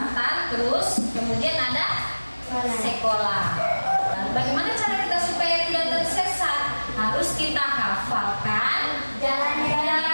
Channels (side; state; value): both; inverted; correlation -1.00